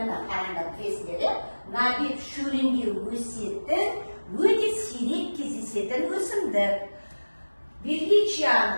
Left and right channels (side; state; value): both; inverted; correlation -1.00